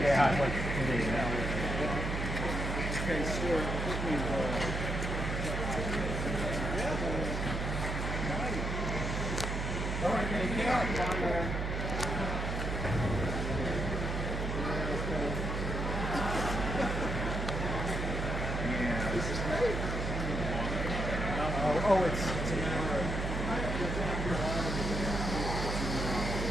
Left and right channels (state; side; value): noise; right; hum, 2 dB below the sound